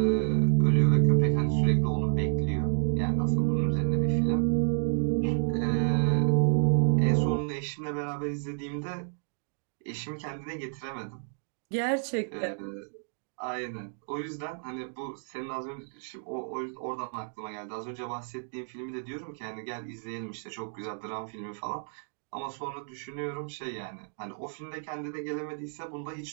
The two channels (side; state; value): left; silent; digital silence